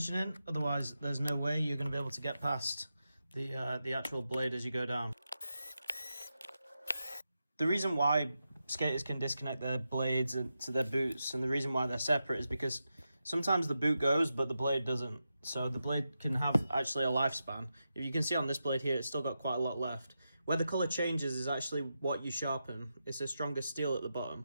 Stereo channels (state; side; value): inverted; both; correlation -0.89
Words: in, otherwise there's no way you're going to be able to get past the actual blade as you go down. The reason why skaters can disconnect their blades to their boots, and the reason why they're separate, is because sometimes the boot goes but the blade doesn't. So the blade can have actually a lifespan. If you can see on this blade here, it's still got quite a lot left. Where the colour changes is actually what you sharpen. It's a stronger steel at the